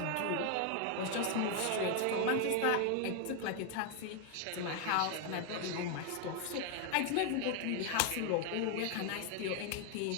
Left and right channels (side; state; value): both; different; correlation 0.01